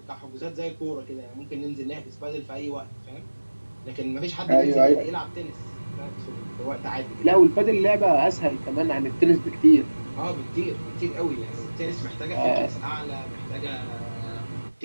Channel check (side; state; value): both; inverted; correlation -1.00